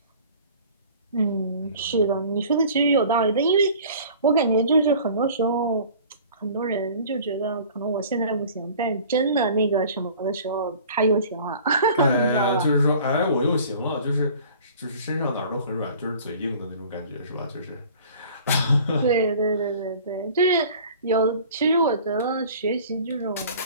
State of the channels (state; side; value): inverted; both; correlation -0.46